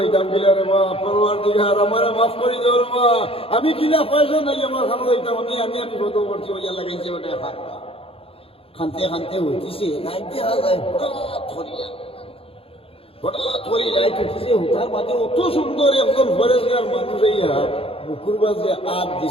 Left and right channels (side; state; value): right; late; 0.27 ms